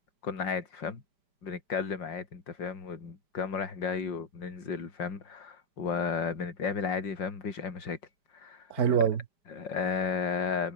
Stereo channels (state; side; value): late; right; 5.6 ms